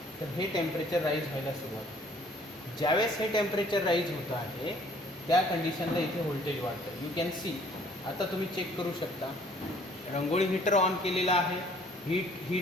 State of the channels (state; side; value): normal; both; correlation 0.58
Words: तर हे टेम्परेचर राईज व्हायला सुरुवात होते. ज्यावेळेस हे टेम्परेचर राईज होतं आहे त्या कंडिशनला इथे व्होल्टेज वाढतं. You can C. आता तुम्ही चेक करू शकता रंगोळी हीटर ऑन केलेला आहे,